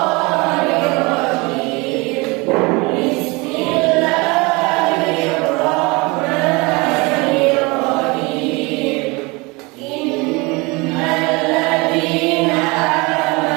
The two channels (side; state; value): left; quieter; 26.0 dB